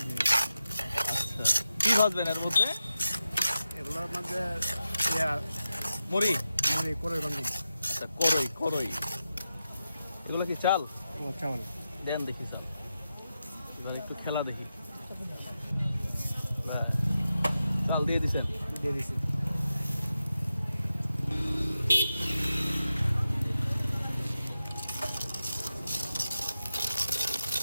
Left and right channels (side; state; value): both; inverted; correlation -0.90